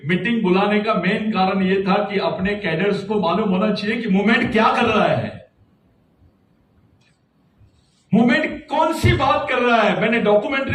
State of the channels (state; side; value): identical; both; correlation 1.00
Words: मीटिंग बुलाने का मेन कारण ये था कि अपने कैडर्स को मालूम होना चाहिए कि मूवमेंट क्या कर रहा है, मूवमेंट कौन सी बात कर रहा है। मैंने